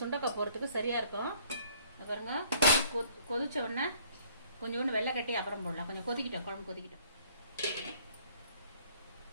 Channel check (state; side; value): inverted; both; correlation -0.60